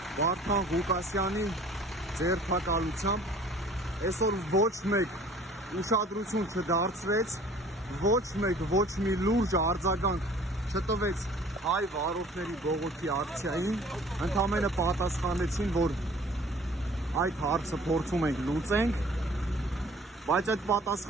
Վարդան Ղուկասյանի ձերբակալությամբ, այսօր ոչ մեկ ուշադրություն չդարձրեց, ոչ մեկ ոչ մի լուրջ արձագանք չտվեց հայ վարորդների բողոքի ակցիային, ընդամենը պատասխանեցին, որ այդ հարցը փորձում ենք լուծենք, բայց այդ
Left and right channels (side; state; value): both; normal; correlation 0.51